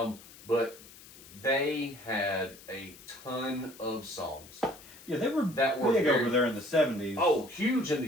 they had a ton of songs. Yeah, they were big over there in the 70s. Oh, huge in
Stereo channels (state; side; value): noise; left; hiss, 20 dB below the sound